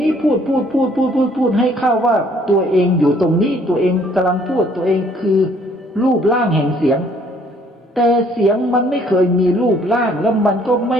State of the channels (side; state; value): both; normal; correlation 0.62